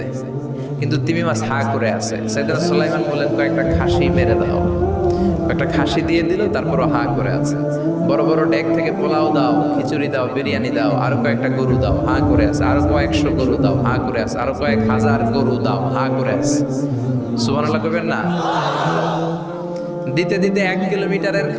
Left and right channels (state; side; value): identical; both; correlation 1.00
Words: কিন্তু তিমি মাছ হা করে আছে। সাইয়েদনা সুলাইমান বললেন, কয়েকটা খাসি মেরে দাও। একটা খাসি দিয়ে দিল, তারপরও হা করে আছে। বড় বড় ডেক থেকে পোলাও দাও, খিচুড়ি দাও, বিরিয়ানি দাও, আরো কয়েকটা গরু দাও, হা করে আছে। আরো কয়েকশো গরু দাও, হা করে আছে। আরো কয়েক হাজার গরু দাও, হা করে আছে। সুবহানাল্লাহ কইবেন না? দিতে দিতে 1 কিলোমিটারের